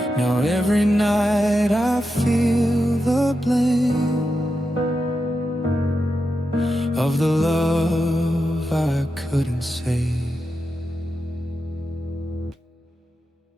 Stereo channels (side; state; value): both; normal; correlation 0.88